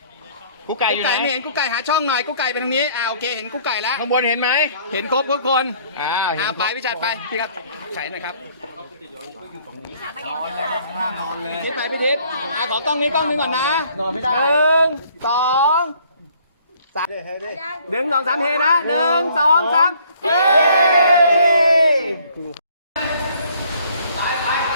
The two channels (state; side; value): inverted; both; correlation -0.60